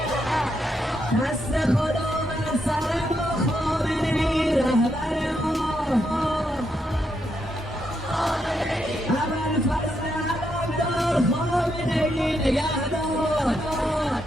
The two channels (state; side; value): normal; both; correlation 0.80